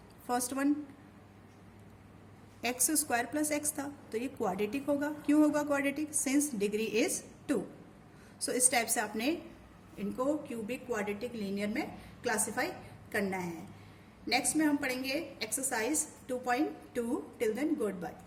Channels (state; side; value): identical; both; correlation 1.00